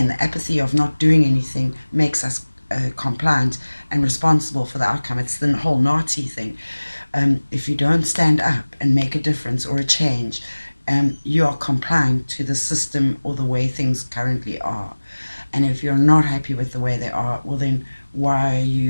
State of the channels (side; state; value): both; inverted; correlation -1.00